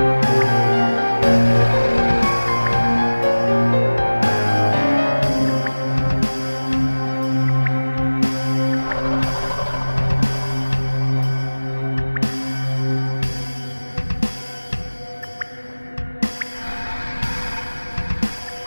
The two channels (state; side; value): inverted; both; correlation -1.00